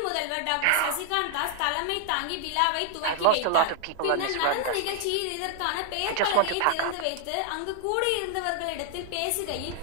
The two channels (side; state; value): both; different; correlation 0.00